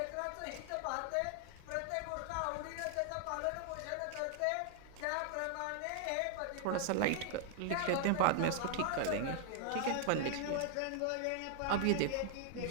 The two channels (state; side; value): different; both; correlation 0.00